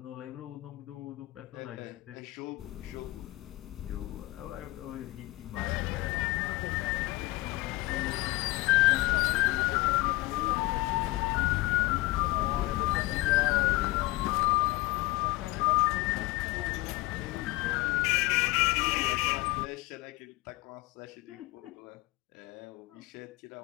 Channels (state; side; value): quieter; right; 20.7 dB